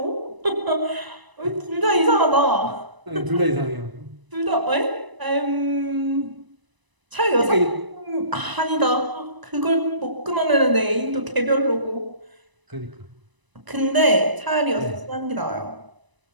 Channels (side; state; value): left; late; 1.0 ms